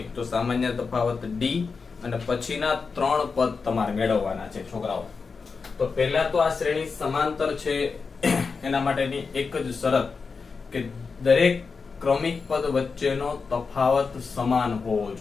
તો સામાન્ય તફાવત d અને પછીના 3 પદ તમારે મેળવવાના છે છોકરાઓ. તો પહેલા તો આ શ્રેણી સમાંતર છે એના માટેની એક જ શરત કે દરેક ક્રમિક પદ વચ્ચેનો તફાવત સમાન હોવો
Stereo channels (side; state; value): right; quieter; 4.9 dB